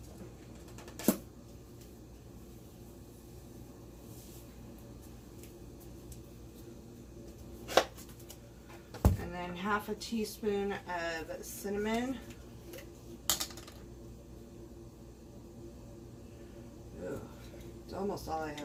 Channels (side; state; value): both; identical; correlation 1.00